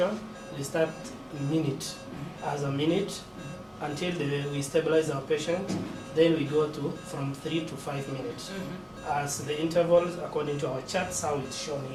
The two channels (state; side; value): identical; both; correlation 1.00